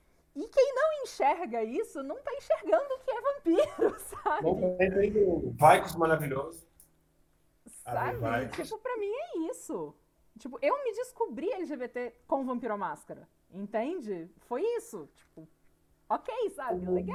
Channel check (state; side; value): identical; both; correlation 1.00